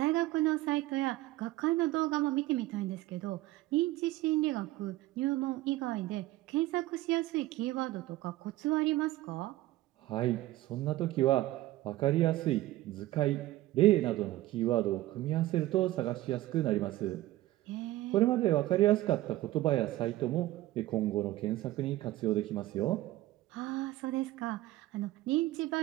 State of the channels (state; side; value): quieter; left; 16.6 dB